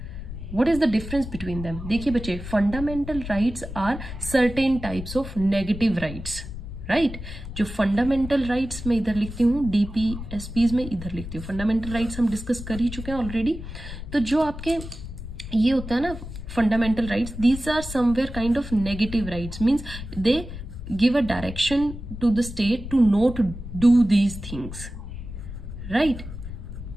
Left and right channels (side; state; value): left; noise; rumble, 10 dB below the sound